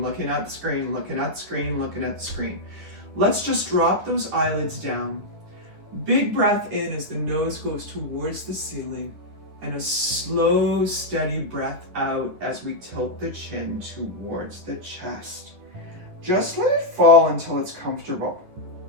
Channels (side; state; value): left; late; 10 ms